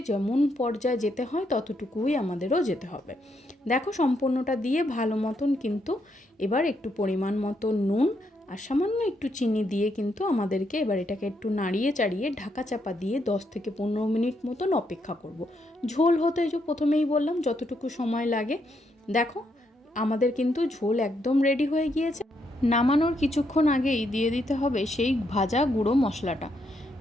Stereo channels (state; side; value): normal; both; correlation 0.77